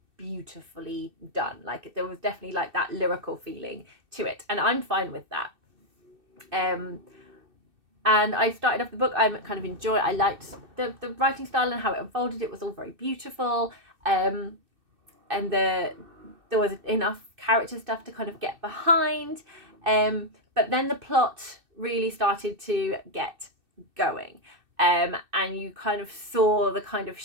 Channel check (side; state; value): left; late; 2.6 ms